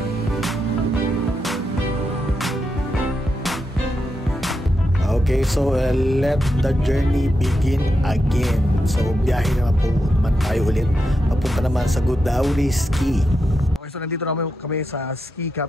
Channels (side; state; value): both; normal; correlation 0.85